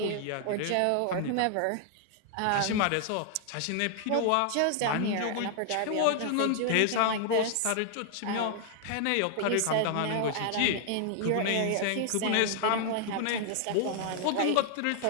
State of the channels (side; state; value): both; different; correlation 0.00